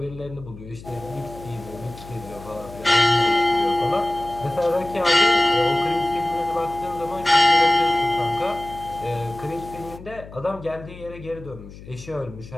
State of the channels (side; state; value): left; noise; hum, 16 dB below the sound